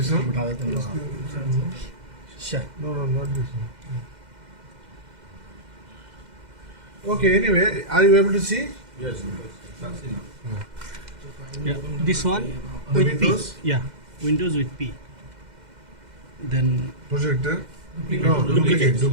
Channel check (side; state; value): left; late; 2.1 ms